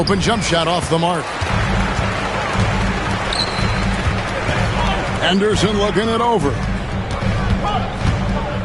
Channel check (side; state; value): both; identical; correlation 1.00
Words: jump shot off the mark. Anderson looking it over.